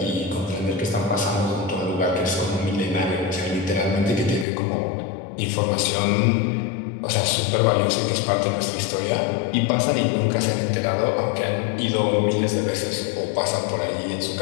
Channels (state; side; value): drops out; right; at 4.5 s